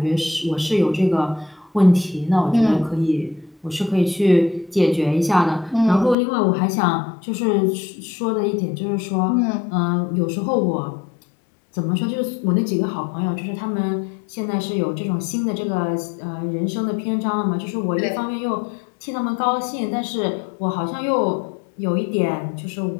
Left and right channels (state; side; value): drops out; right; at 6.2 s